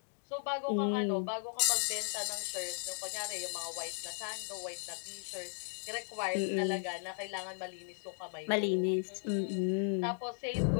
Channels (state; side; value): silent; right; digital silence